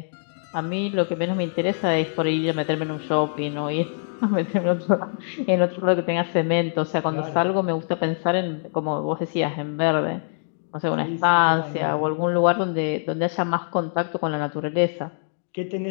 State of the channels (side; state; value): right; silent; digital silence